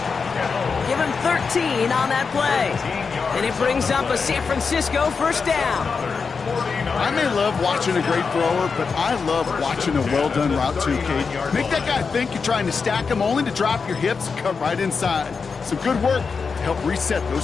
Give him 13 on that play. And it brings up a San Francisco first down. I may love watching a great thrower, but I love watching a well-done route too, Kate. Make that guy think you're trying to stack him only to drop your hips and cut right inside. Some good work to help reset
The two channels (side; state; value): right; quieter; 5.2 dB